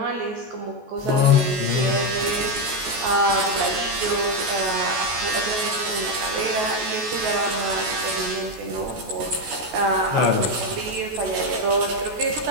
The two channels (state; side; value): late; left; 14 ms